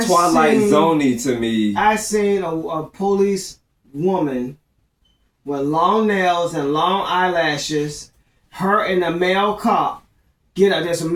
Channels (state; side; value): identical; both; correlation 1.00